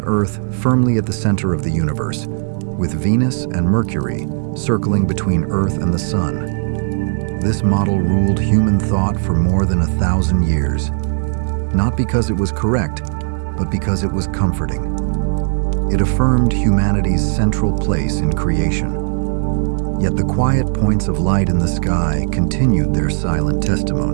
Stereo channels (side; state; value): left; silent; 68 dB below the other